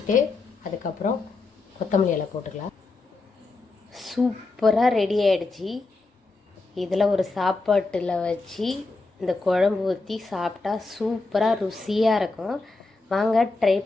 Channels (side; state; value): right; quieter; 3.5 dB